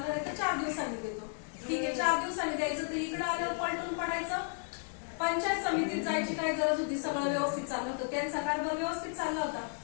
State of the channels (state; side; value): silent; right; 55 dB below the other